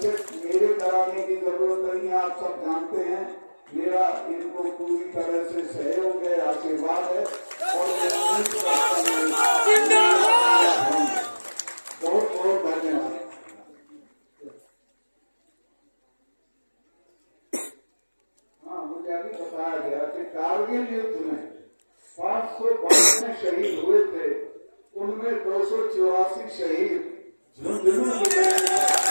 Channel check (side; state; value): both; inverted; correlation -1.00